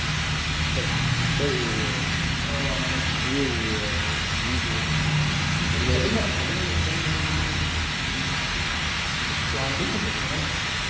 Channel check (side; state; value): both; identical; correlation 1.00